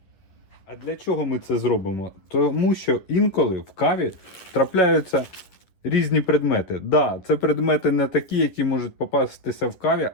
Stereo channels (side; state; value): right; late; 10 ms